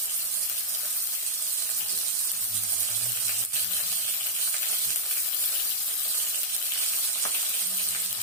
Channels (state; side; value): normal; both; correlation -0.01